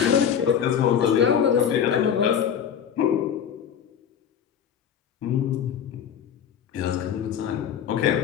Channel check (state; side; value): quieter; right; 8.5 dB